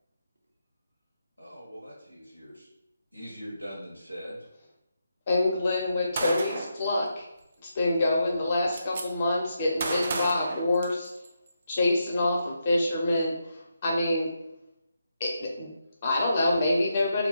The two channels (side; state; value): both; inverted; correlation -0.83